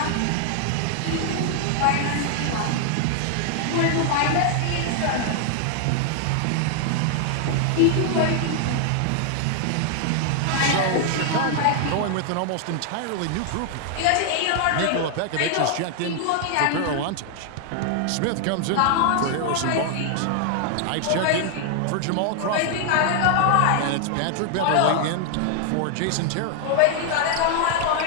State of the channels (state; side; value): different; both; correlation 0.00